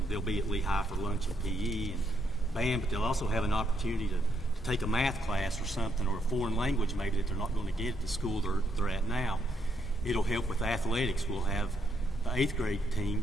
They'll be at Lehigh for lunch and PE and band, but they'll also have an opportunity to take a math class or something, or a foreign language maybe that they're not going to get at the school they're at now. It'll help with athletics. We'll have the 8th grade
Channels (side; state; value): both; normal; correlation 0.76